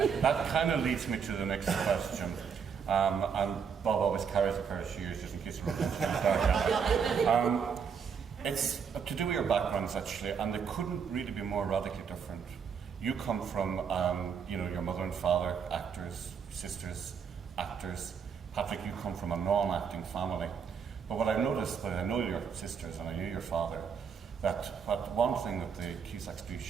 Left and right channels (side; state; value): left; quieter; 6.7 dB